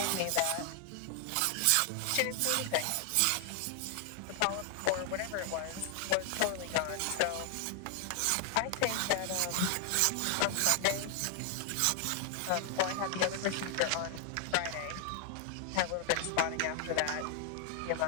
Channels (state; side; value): different; both; correlation 0.00